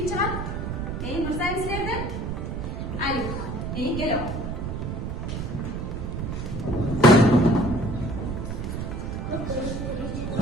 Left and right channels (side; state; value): right; noise; rumble, 4 dB below the sound